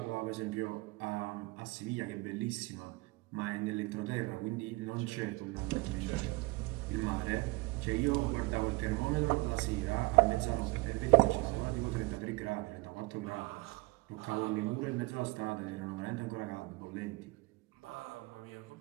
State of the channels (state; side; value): quieter; left; 23.4 dB